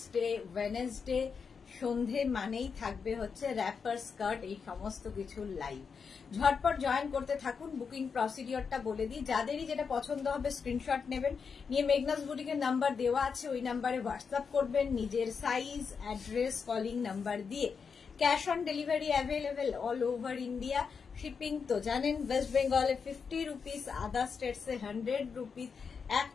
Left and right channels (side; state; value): right; quieter; 5.8 dB